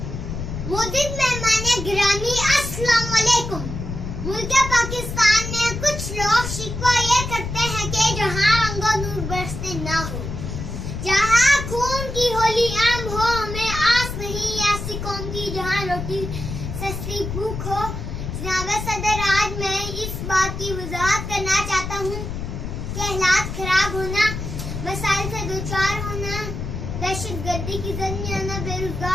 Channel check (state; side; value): noise; left; rumble, 6 dB below the sound